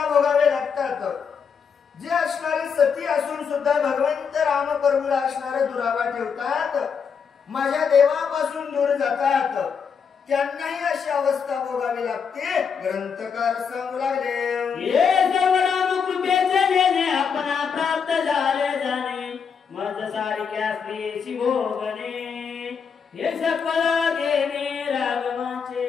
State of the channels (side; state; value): right; quieter; 6.4 dB